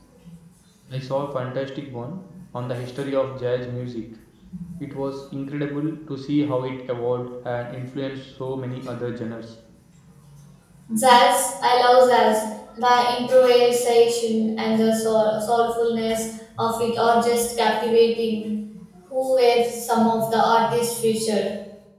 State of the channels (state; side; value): identical; both; correlation 1.00